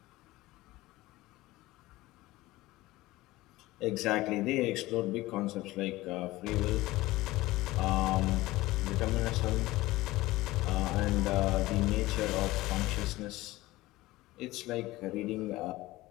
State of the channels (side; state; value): right; quieter; 18.5 dB